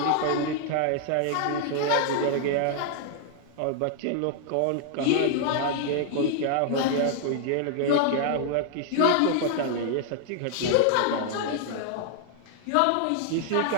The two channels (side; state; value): both; different; correlation 0.00